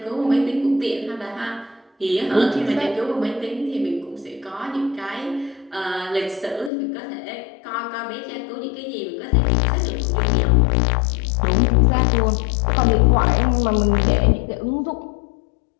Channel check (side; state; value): right; drops out; at 6.7 s